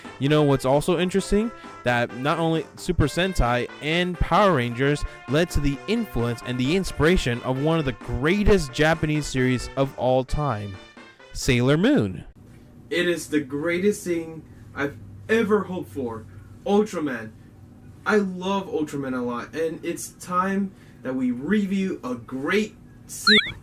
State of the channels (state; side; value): identical; both; correlation 1.00